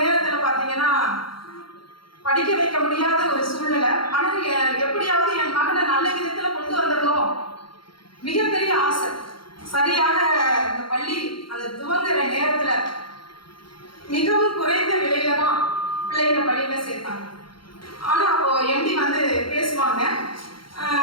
பார்த்தீங்கன்னா படிக்க வைக்க முடியாத ஒரு சூழ்நிலை. ஆனால் எப்படியாவது என் மகனை நல்ல விதத்தில் கொண்டு வந்துடணும் மிகப்பெரிய ஆசை. சரியாக அந்த பள்ளி அந்த துவங்குற நேரத்தில் மிகவும் குறைந்த விலையில தான் பிள்ளைகளை பள்ளியில சேர்த்தாங்க. ஆனால் அப்போ எம்டி வந்து பேசுவாங்க.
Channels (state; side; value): late; right; 0.73 ms